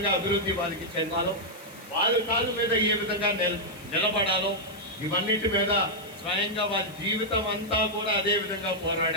అభివృద్ధి వాళ్ళకి చెందాలో, వాళ్ళ కాళ్ళ మీద ఏ విధంగా నిలబడాలో, ఇవన్నిటి మీద స్వయంగా వాళ్ళ జీవితం అంతా కూడా అదే విధంగా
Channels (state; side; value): noise; left; hiss, 22 dB below the sound